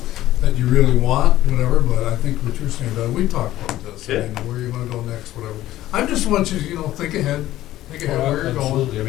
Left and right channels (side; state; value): right; quieter; 14.6 dB